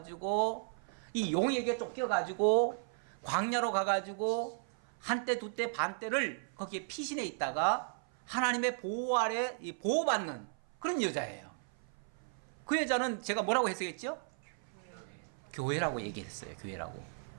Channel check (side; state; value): left; silent; 54 dB below the other